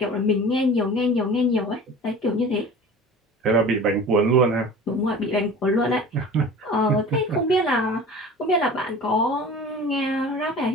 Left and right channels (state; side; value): normal; both; correlation 0.40